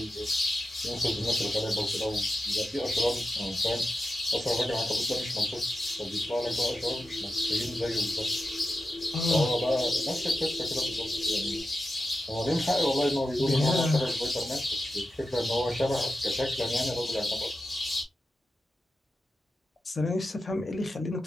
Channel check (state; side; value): normal; both; correlation 0.90